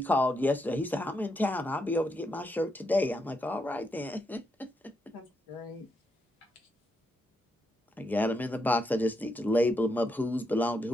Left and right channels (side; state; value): both; normal; correlation 0.81